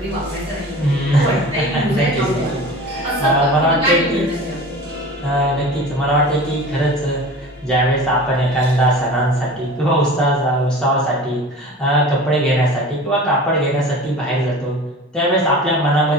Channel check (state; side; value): normal; both; correlation 0.38